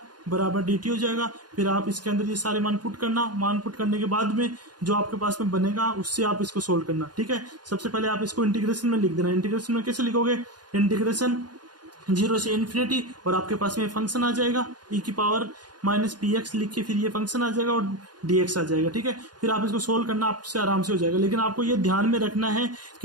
बराबर dt हो जाएगा, फिर आप इसके अंदर ये सारे मान पुट करना, मान पुट करने के बाद में जो आपके पास में बनेगा उससे आप इसको सोल्व करना। ठीक है, सबसे पहले आप इसको इंटीग्रेशन में लिख देना। इंटीग्रेशन में कैसे लिखोगे, इंटीग्रेशन 0 से इन्फिनिटी, और आपके पास में फंक्शन आ जाएगा e की पावर माइनस पी एक्स लिख के फिर ये फंक्शन आ जाएगा और dx आ जाएगा। ठीक है, फिर आप इसको सोल्व करना आपसे आराम से हो जाएगा। लेकिन आपको ये ध्यान में रखना है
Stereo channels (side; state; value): left; late; 0.70 ms